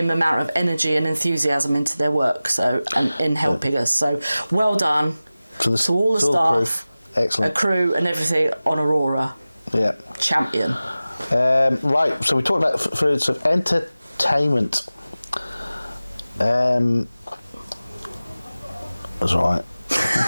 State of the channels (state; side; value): inverted; both; correlation -0.97